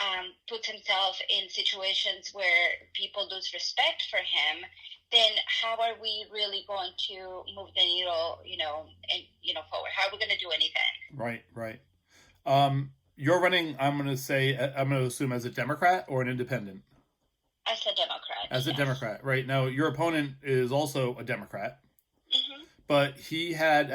puts himself in situations where people lose respect for him, then how are we really going to move the needle, forward? How are we going to do anything? Right. You're running, I'm going to assume as a Democrat or an independent? As a Democrat. As a Democrat, right. Now, your opponent is also a Democrat, mm-hmm. but he had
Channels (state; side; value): identical; both; correlation 1.00